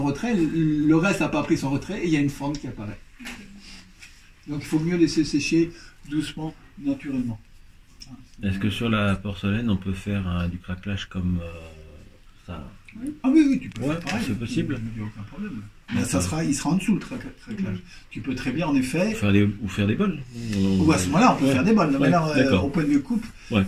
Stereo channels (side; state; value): both; identical; correlation 1.00